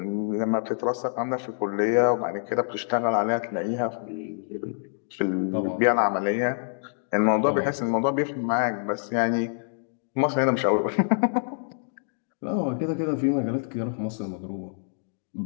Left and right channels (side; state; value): right; silent; digital silence